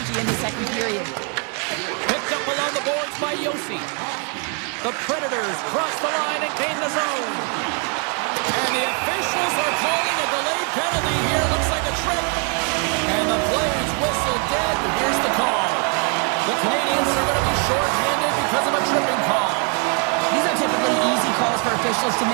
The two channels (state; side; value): quieter; left; 39.1 dB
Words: in the second period. Picked up along the boards by Yossi. The Predators cross the line and gain the zone. And the officials are calling a delayed penalty here. Looks like a trip. And the players whistle dead. Here's the call. The Canadiens are going to be short-handed because of a tripping call. These are typically easy calls for officials to